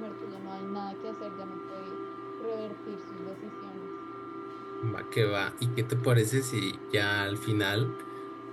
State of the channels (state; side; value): identical; both; correlation 1.00